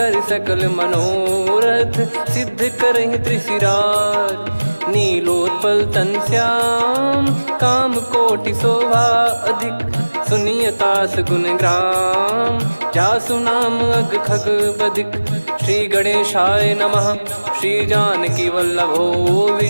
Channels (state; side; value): inverted; both; correlation -1.00